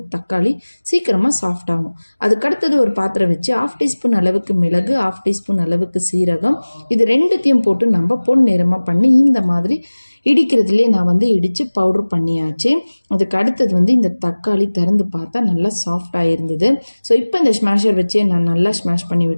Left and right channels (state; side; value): inverted; both; correlation -1.00